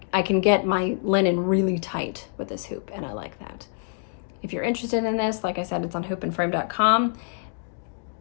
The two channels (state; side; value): silent; right; digital silence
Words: can get my linen really tight with this hoop, and I like that. If you're interested in this, like I said, it's on hoopandframe.com.